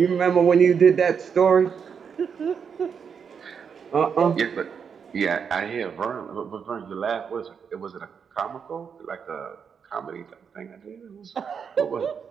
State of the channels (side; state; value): left; quieter; 6.7 dB